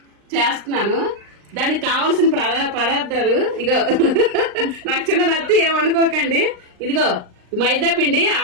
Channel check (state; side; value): late; left; 39 ms